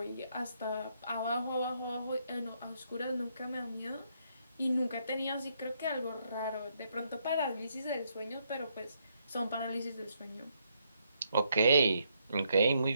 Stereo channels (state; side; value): inverted; both; correlation -0.75